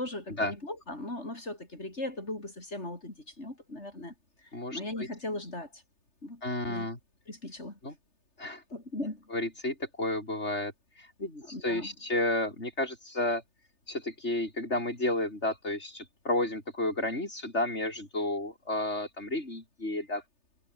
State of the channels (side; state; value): right; late; 3.3 ms